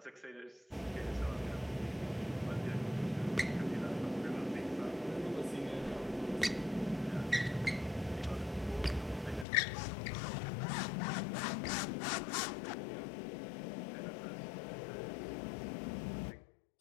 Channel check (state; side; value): drops out; right; at 9.5 s